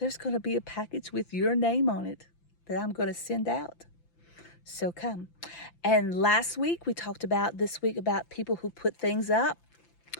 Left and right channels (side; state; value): right; late; 5.9 ms